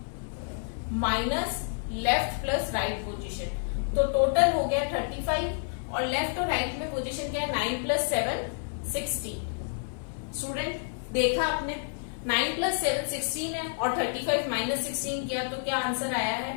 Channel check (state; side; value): silent; right; digital silence